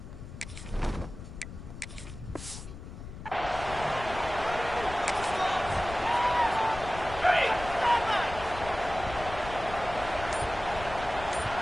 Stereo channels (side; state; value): left; noise; rumble, 12 dB below the sound